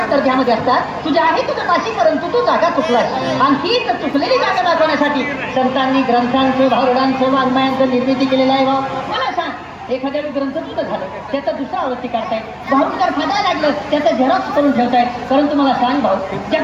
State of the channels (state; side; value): identical; both; correlation 1.00